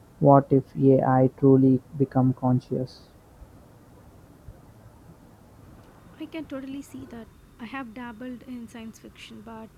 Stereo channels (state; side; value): identical; both; correlation 1.00